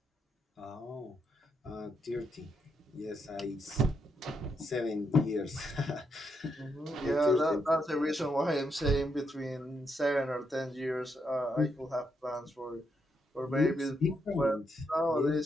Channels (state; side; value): normal; both; correlation 0.79